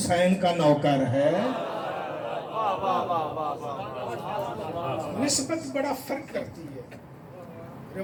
کا نوکر ہے. نسبت بڑا فرق کرتی ہے.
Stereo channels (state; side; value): identical; both; correlation 1.00